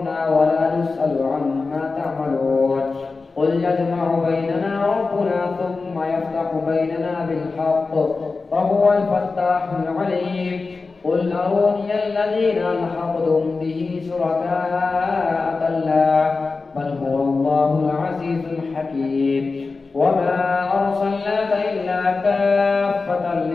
ولا نسأل عما تعملون قل يجمع بيننا ربنا ثم يفتح بيننا بالحق وهو الفتاح العليم قل أروني الذين ألحقتم به شركاء كلا بل هو الله العزيز الحكيم وما أرسلناك إلا كافة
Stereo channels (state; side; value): quieter; right; 4.1 dB